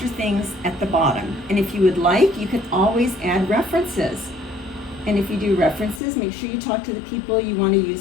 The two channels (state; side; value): drops out; right; at 6.0 s